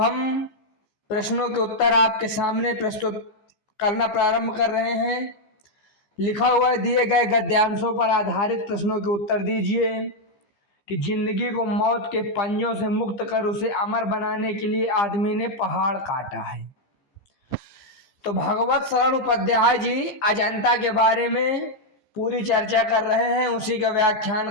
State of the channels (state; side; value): late; right; 15 ms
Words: हम प्रश्नों के उत्तर आपके सामने प्रस्तुत करना प्रारंभ कर रहे हैं। लिखा हुआ है, दिए गए गद्यांशों पर आधारित प्रश्नों के उत्तर दीजिए कि जिंदगी को मौत के पंजों से मुक्त कर उसे अमर बनाने के लिए आदमी ने पहाड़ काटा है। तो भगवत शरण उपाध्याय जी अजंता के बारे में पूरी चर्चा कर रहे हैं, उसी का